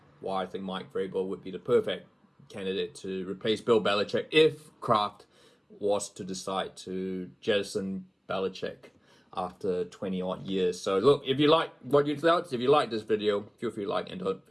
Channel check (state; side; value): identical; both; correlation 1.00